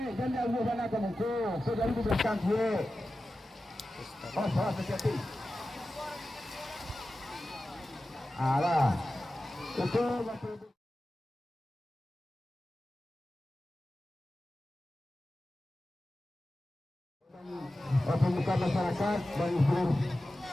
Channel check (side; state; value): both; normal; correlation 0.94